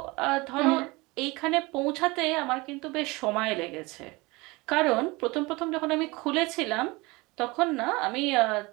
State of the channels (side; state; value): left; quieter; 23.8 dB